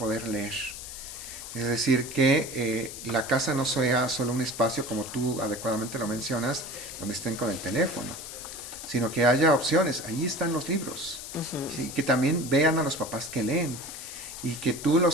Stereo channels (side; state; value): left; noise; hiss, 10 dB below the sound